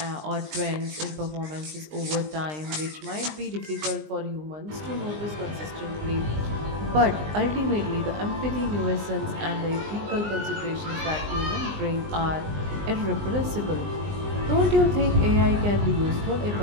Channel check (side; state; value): left; late; 20 ms